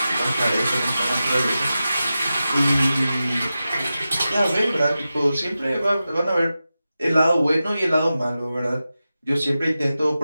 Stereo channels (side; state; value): both; inverted; correlation -0.93